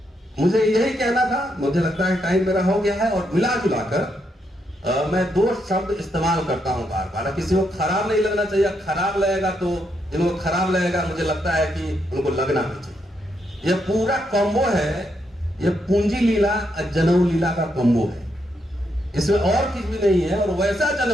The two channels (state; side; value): normal; both; correlation 0.79